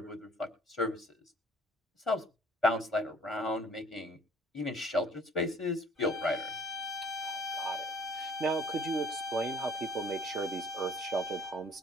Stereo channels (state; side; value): normal; both; correlation 0.54